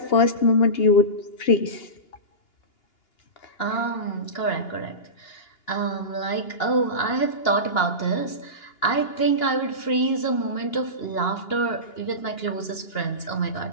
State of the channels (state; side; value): late; right; 2.8 ms